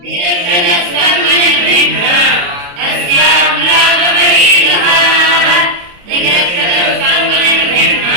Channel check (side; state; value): left; late; 28 ms